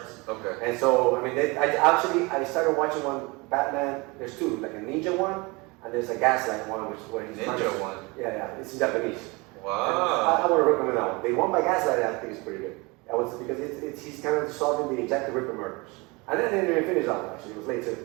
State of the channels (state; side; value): quieter; left; 26.1 dB